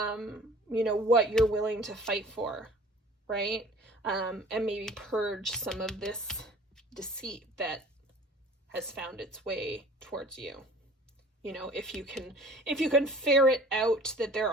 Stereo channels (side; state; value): both; normal; correlation 0.48